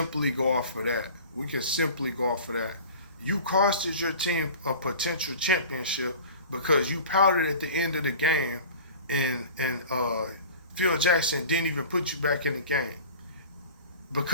go off of that. You costed your team a potential championship because you pouted at the end of the game and Phil Jackson didn't even put you back in the game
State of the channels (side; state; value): both; inverted; correlation -0.41